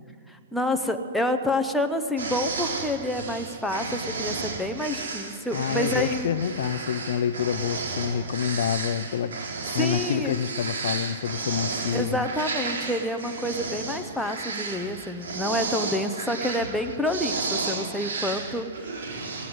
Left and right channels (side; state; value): both; normal; correlation -0.02